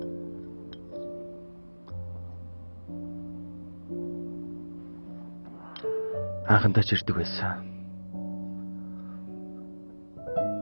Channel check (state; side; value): inverted; both; correlation -1.00